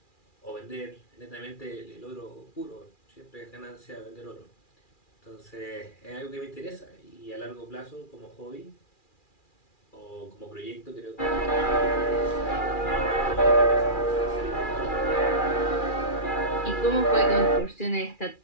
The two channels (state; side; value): late; right; 2.4 ms